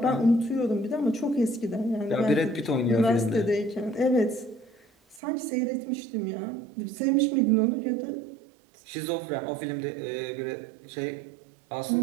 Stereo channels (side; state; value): left; drops out; at 5.2 s